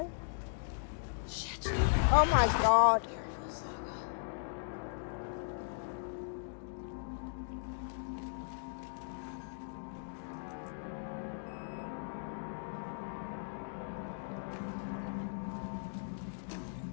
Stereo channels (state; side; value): silent; right; digital silence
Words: Shit. Oh my god. Careful, Saga.